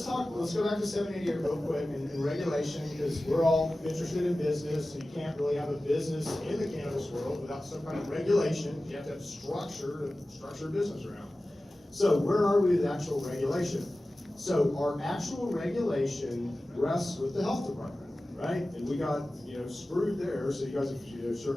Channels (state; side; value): normal; both; correlation 0.96